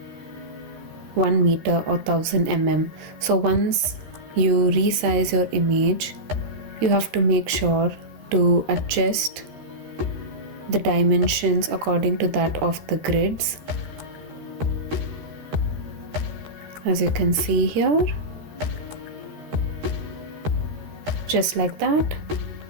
1 meter or 1000 mm. So once you resize your image, you have to make sure to adjust the dimensions according to that of the grids, as you can see here, just like that.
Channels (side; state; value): left; late; 13 ms